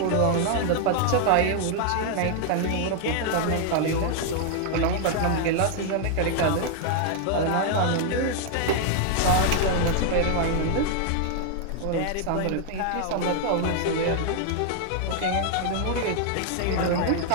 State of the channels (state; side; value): different; both; correlation 0.00